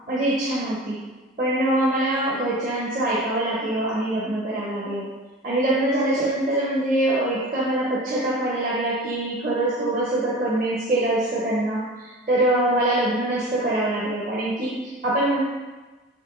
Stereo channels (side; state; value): both; normal; correlation 0.36